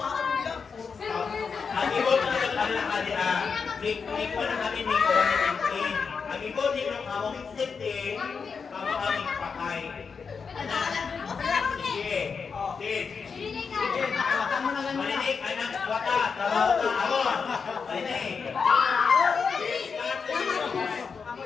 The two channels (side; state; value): right; quieter; 5.6 dB